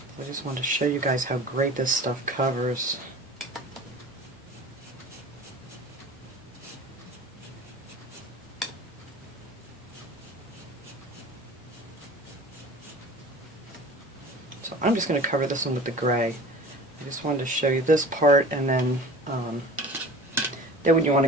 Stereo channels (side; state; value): both; normal; correlation 0.40